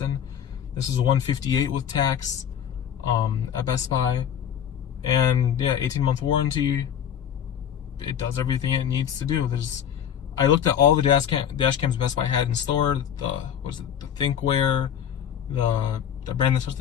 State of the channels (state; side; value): quieter; right; 9.0 dB